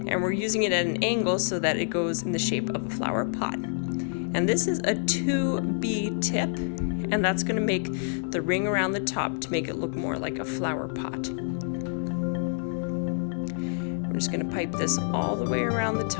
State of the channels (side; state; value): right; silent; digital silence